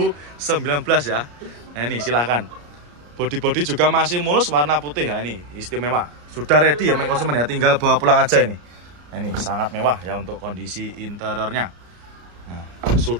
ya. Nah, ini silahkan. Body juga masih mulus, warna putih ya, ini istimewa. Sudah ready ya main konsumen ya, tinggal bawa pulang aja ini. Nah, ini sangat mewah ya untuk kondisi interiornya. Nah,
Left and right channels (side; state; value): left; late; 34 ms